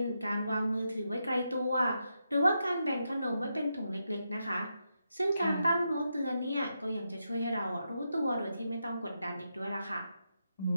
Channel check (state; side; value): inverted; both; correlation -0.85